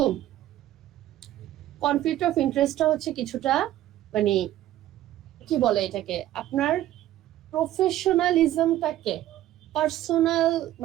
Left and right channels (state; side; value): quieter; left; 13.6 dB